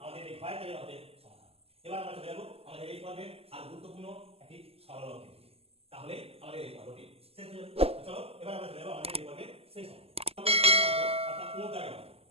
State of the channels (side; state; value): left; late; 0.29 ms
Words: আমাদের এই ভয়ের দাগের আমাদের সমাধান। এবার আমরা চলে যাব আমাদের এই পর্বে আর গুরুত্বপূর্ণ একটি সরল অঙ্কের দিকে, তাহলে আমাদের এই পর্বটি শেষ হয়ে যাবে। চলো এবার আমরা চলে যাব আমাদের এই পর্বের শেষ অঙ্ক, অর্থাৎ মোট দাগের অঙ্ক।